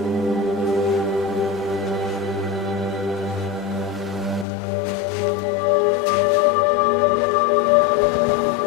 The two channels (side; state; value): right; drops out; at 4.5 s